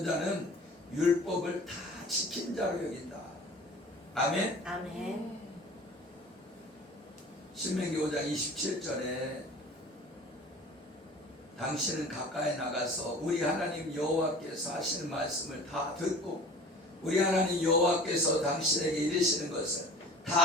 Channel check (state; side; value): normal; both; correlation 0.43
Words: 자는 율법을 다 지킨 자로 여긴다. 아멘. 아멘. 신명기 5장 27절에 당신은 가까이 나가서 우리 하나님 여호와께서 하시는 말씀을 다 듣고 우리 하나님 여호와께서 당신에게 이르시는 것을